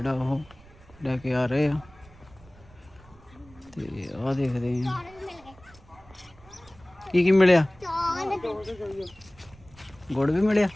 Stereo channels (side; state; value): right; noise; rumble, 24 dB below the sound